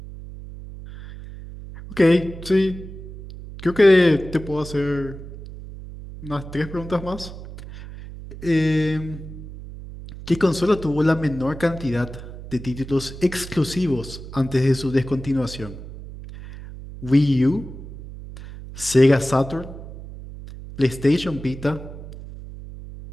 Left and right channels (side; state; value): right; noise; hum, 13 dB below the sound